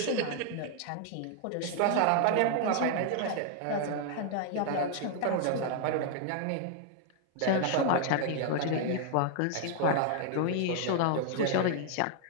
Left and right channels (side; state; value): both; different; correlation 0.00